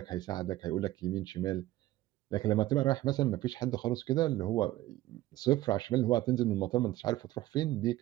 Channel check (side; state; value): left; quieter; 16.0 dB